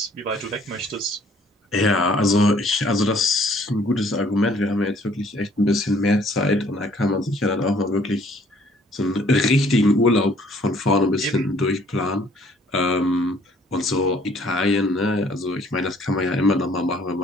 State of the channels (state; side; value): normal; both; correlation 0.60